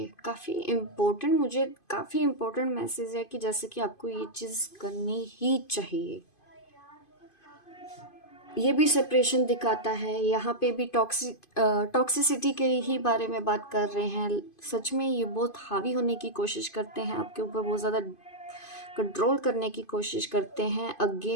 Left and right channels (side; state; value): right; late; 2.5 ms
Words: काफ़ी इम्पोर्टेंट, मुझे काफ़ी इम्पोर्टेंट मैसेज है कि जैसे कि आपको ये चीज़ करनी ही चाहिए। ये भी सेपरेशन दिखाता है, यहाँ पे भी टॉक्सिसिटी के ही बारे में बात कर रहे हैं। सच में ये बहुत हावी होने की कोशिश करते हैं आपके ऊपर, बहुत ज़्यादा कंट्रोल करने की कोशिश करते हैं।